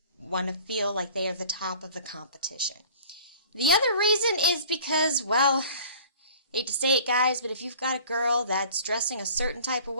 want to feel like they are the top of the competition. The other reason is because, well, hate to say it, guys, but if you've got a girl that's dressing a certain type of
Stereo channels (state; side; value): inverted; both; correlation -0.48